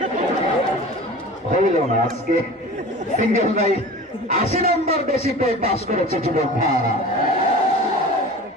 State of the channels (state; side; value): normal; both; correlation 0.37